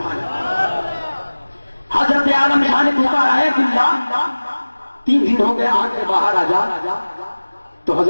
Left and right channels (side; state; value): both; inverted; correlation -1.00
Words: حضرت عالم شاہ نے پکارا ہے، عبداللہ 3 دن ہو گئے، آگ سے باہر آ جا۔ تو